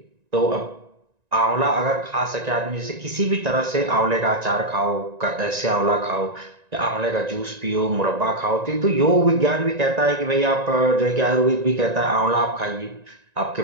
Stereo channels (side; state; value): left; late; 1.9 ms